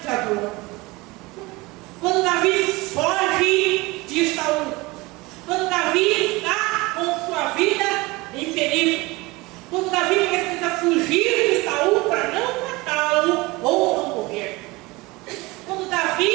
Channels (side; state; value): left; quieter; 22.8 dB